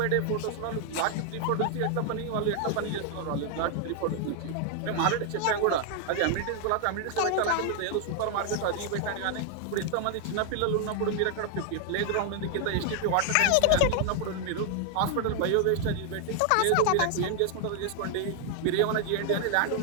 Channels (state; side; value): different; both; correlation 0.00